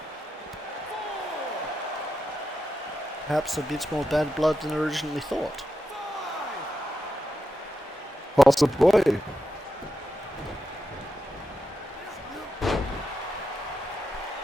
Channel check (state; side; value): normal; both; correlation 0.87